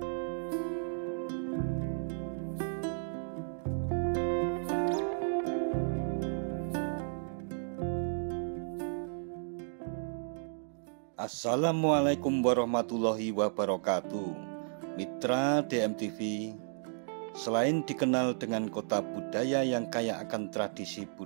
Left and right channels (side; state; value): left; silent; digital silence